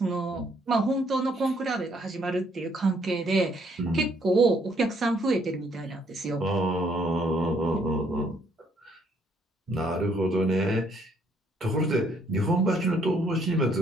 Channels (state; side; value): normal; both; correlation 0.67